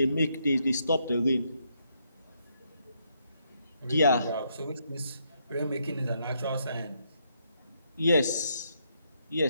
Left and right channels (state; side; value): inverted; both; correlation -0.76